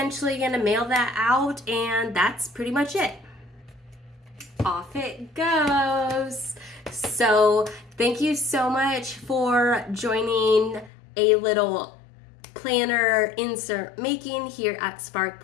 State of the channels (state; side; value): drops out; right; at 10.9 s